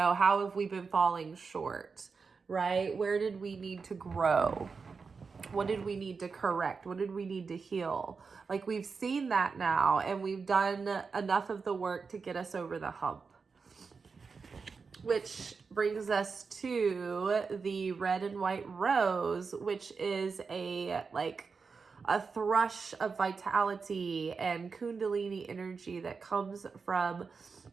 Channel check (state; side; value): quieter; left; 5.0 dB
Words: have we been falling short, right? Where did we need to grow? What did we need to correct? What did we need to heal? Like, we've seen that now, and we've done enough of the work to get us over the hump. Which brings us to the red and white rose, which is a thrush of vitality and kundalini energy that comes from